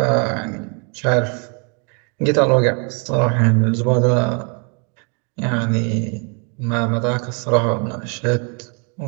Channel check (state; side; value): quieter; left; 36.5 dB